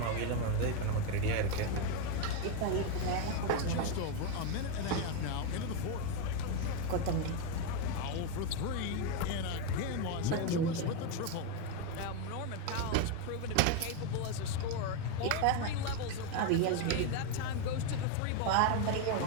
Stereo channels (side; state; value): both; different; correlation 0.02